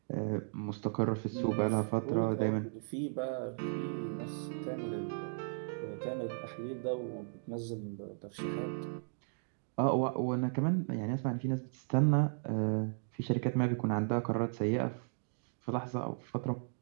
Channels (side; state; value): left; silent; digital silence